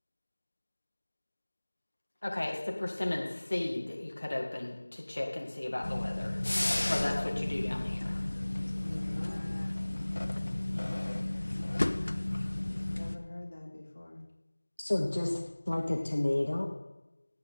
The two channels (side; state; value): both; inverted; correlation -1.00